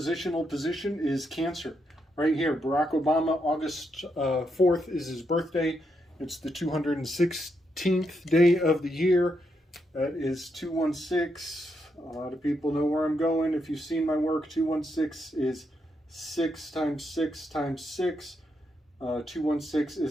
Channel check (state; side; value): normal; both; correlation 0.80